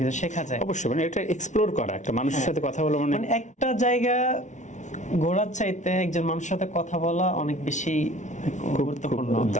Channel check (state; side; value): late; right; 0.35 ms